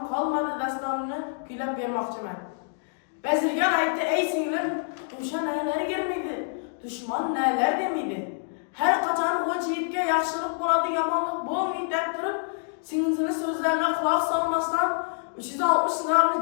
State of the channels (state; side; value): silent; right; digital silence